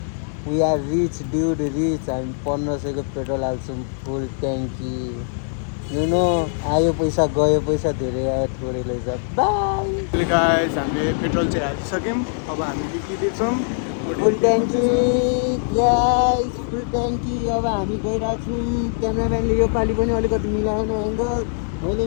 We are rich dude, rich. हामी 1500 को पेट्रोल हाल्छौँ फुल ट्याङ्की। यु नो, आयो पैसा गयो पैसा, धेरै आयो थोरै लैजा। बाई गाइस, हामीले पेट्रोल चाहिँ हालिसक्यौँ। अब हामी निक्लिँदैछौँ फुल ट्याङ्की। गाइस फुल ट्याङ्की। अब हामी गइरहेछौँ। क्यामेराम्यानले यो पालि पनि अलिकति मिलाएन एङ्गल, मैले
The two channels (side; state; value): right; silent; 64 dB below the other